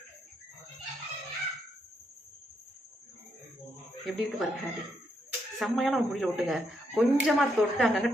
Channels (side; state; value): both; normal; correlation 0.78